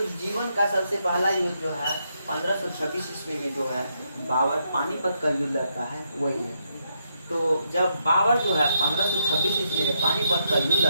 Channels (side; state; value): both; inverted; correlation -0.79